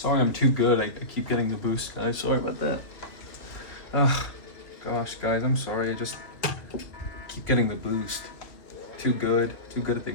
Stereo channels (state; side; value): late; right; 2.6 ms